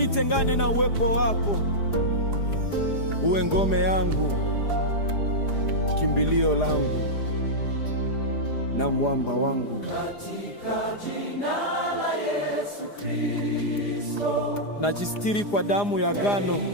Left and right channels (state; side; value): late; right; 4.9 ms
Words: na uwepo wako. Uwe ngome yangu, kimbilio langu na mwamba wangu. Katika jina la Yesu Kristo, najistiri kwa damu ya agano